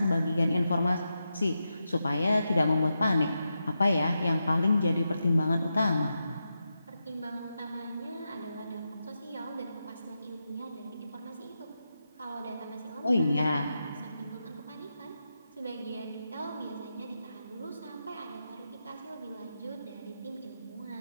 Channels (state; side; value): inverted; both; correlation -0.88